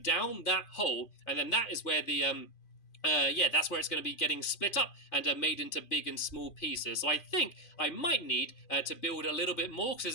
down that hole, and then that is where the that's where it's going to be getting split up and made into big and small pieces. So I think I might need to build a little bit more,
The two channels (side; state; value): right; late; 2.5 ms